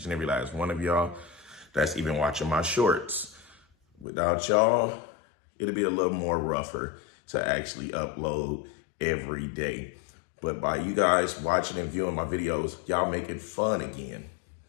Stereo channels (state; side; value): drops out; right; at 4.0 s